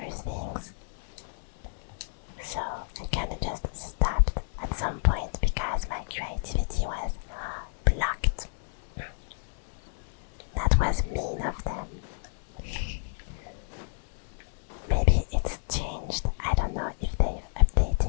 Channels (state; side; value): silent; right; digital silence